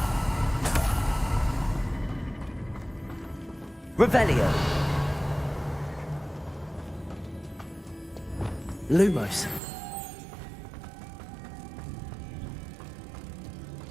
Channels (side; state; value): left; drops out; at 9.6 s